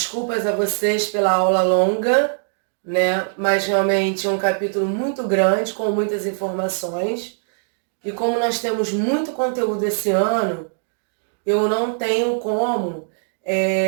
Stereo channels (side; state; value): left; silent; digital silence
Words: a vocês pela aula longa, né? Mas realmente é um capítulo muito grande, com muitas informações. E como nós temos muito conteúdo esse ano, eu não tenho como